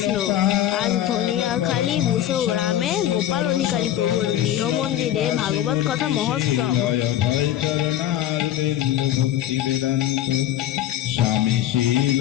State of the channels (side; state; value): right; quieter; 12.0 dB